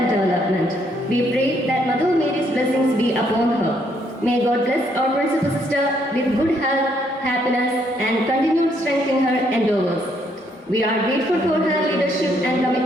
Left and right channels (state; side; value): normal; both; correlation 0.71